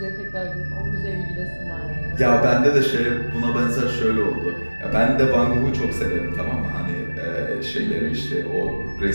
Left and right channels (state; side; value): inverted; both; correlation -1.00